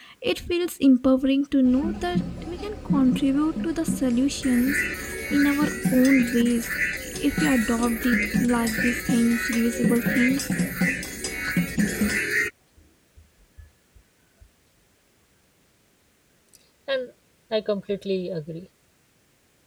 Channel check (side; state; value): both; identical; correlation 1.00